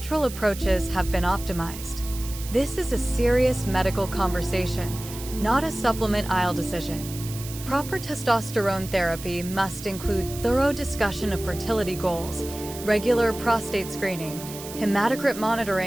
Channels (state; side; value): noise; right; hiss, 12 dB below the sound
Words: approaches have been optimized. This is a serious medical conversation, not a supplement aisle decision. Proper testosterone therapy must include thorough discussion of fertility goals, regular prostate screening, hematocrit